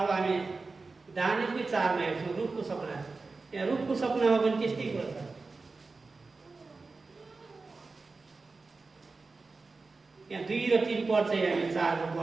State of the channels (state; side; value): quieter; left; 3.9 dB